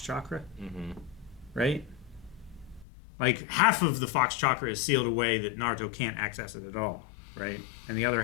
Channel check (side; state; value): right; drops out; at 2.9 s